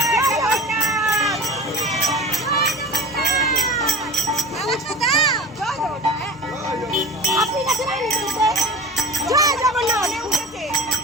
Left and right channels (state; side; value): normal; both; correlation 0.34